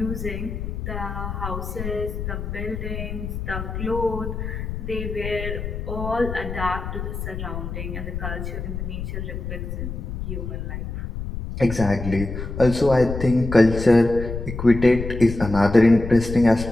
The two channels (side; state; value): left; noise; rumble, 6 dB below the sound